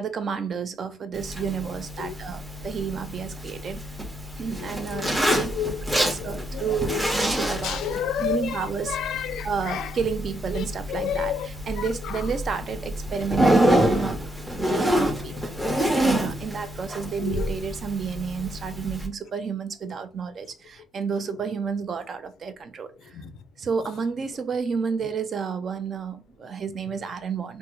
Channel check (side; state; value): both; normal; correlation 0.76